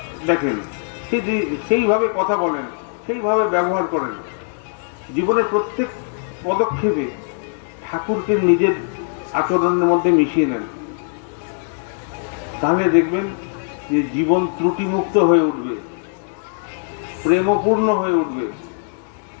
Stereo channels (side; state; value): right; silent; 60 dB below the other